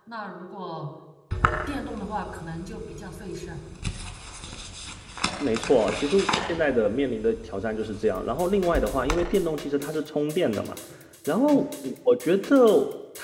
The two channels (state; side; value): identical; both; correlation 1.00